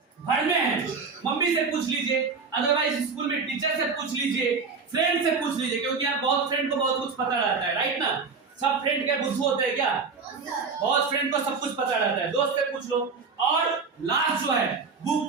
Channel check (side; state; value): left; quieter; 4.9 dB